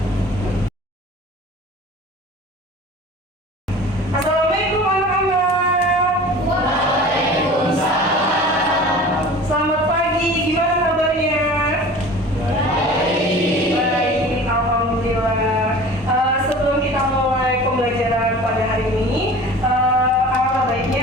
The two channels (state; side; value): normal; both; correlation 0.41